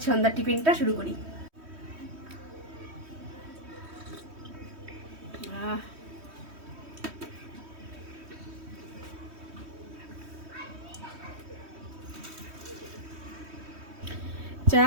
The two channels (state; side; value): late; left; 3.1 ms